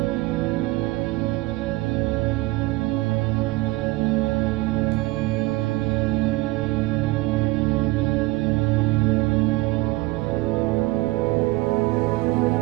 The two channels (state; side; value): quieter; left; 20.7 dB